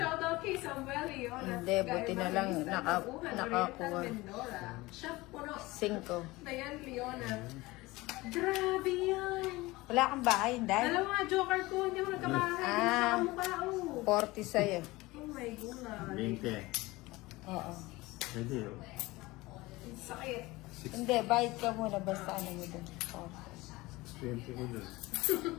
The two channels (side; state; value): right; quieter; 20.8 dB